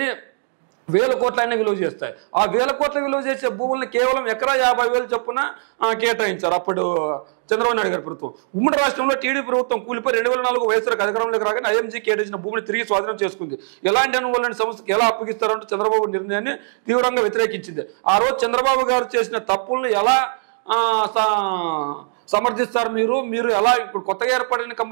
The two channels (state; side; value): silent; left; digital silence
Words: వేల కోట్లైనా విలువ చేస్తాయి. ఆ వేల కోట్ల విలువ చేసే భూములను కేవలం ఎకరా 50,000 చొప్పున కేటాయించారు అప్పుడు చంద్రబాబు నాయుడు గారి ప్రభుత్వం. ఉమ్మడి రాష్ట్రంలో టీడీపీ ప్రభుత్వం కూలిపోయి 2004 వైఎస్ఆర్ అధికారంలోకి రాగానే ఐఎంజీ కేటాయించిన భూమిని తిరిగి స్వాధీనం చేసుకుంది. ఎలాంటి అనుభవాలని సంస్థకి ఎలా అప్పగిస్తారంటూ చంద్రబాబు నిర్ణయాన్ని తీవ్రంగా వ్యతిరేకించింది. ఆ రోజు చంద్రబాబు గారు చేసిన తప్పులను ఎలా సమర్థిస్తారు మీరు ఎలా ఇప్పుడు కొత్తగా ఏర్పడిన